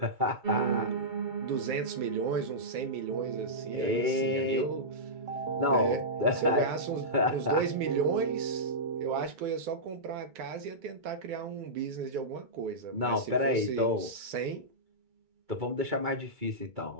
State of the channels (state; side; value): late; left; 2.3 ms